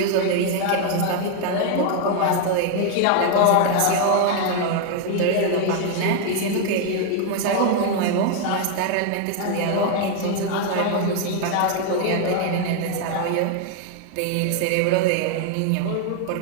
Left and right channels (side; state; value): both; different; correlation 0.01